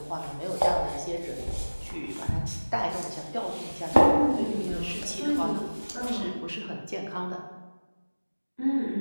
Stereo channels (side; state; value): both; inverted; correlation -1.00